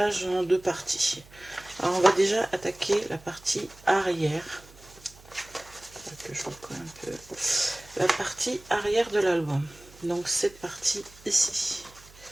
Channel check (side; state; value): right; noise; hum, 23 dB below the sound